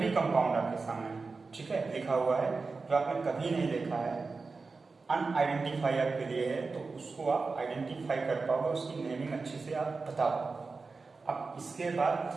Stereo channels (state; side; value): quieter; left; 4.2 dB